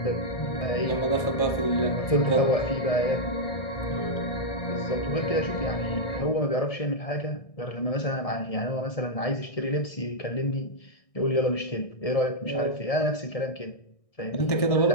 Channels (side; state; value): right; late; 1.6 ms